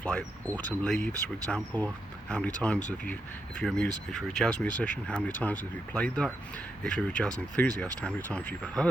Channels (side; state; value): both; normal; correlation 0.84